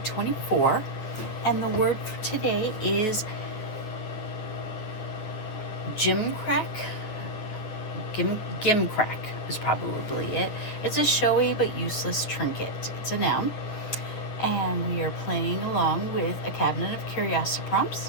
24, and the word for today is Gimcrack. Gimcrack is probably it. It's a showy but useless trinket. It's a noun, and we are playing along with a Cabinet of Curiosity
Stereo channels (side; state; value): right; late; 9.5 ms